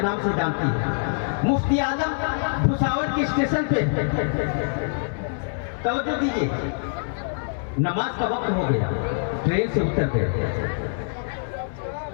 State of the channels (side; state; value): right; silent; digital silence